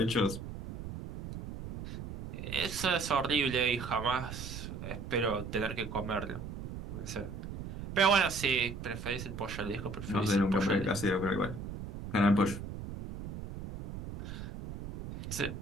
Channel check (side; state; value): right; noise; rumble, 9 dB below the sound